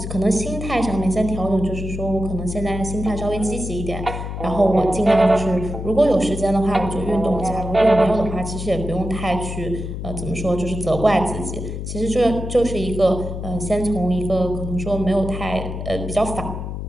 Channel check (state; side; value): noise; left; hum, 6 dB below the sound